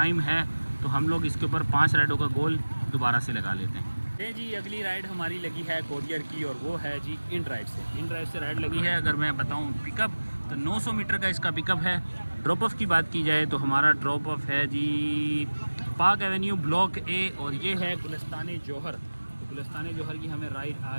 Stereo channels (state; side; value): inverted; both; correlation -1.00